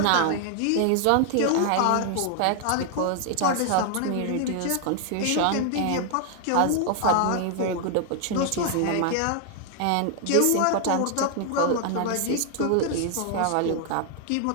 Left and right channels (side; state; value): both; different; correlation 0.00